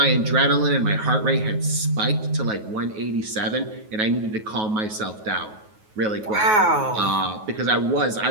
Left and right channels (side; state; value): left; late; 9.4 ms